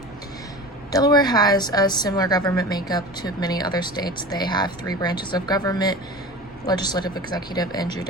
Delaware has a similar government makeup to many other states. They have 3 branches of government: legislative, executive, and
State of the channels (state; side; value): normal; both; correlation 0.35